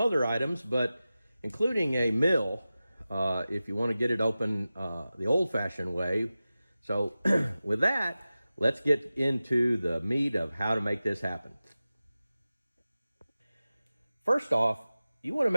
items, but including a mill if you want to get it open the old-fashioned way. So with that, let's get into the meat of how to make this happen. First off, you want to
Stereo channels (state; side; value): inverted; both; correlation -0.95